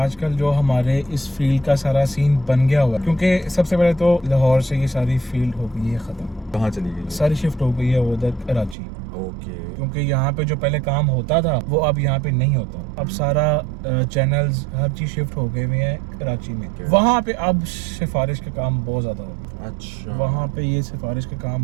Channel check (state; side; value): drops out; left; at 8.8 s